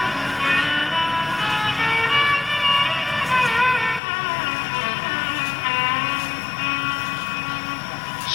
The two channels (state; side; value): drops out; right; at 4.0 s